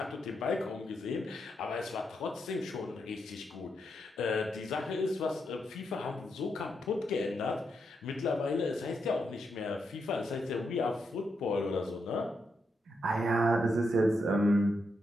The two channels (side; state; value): both; normal; correlation 0.82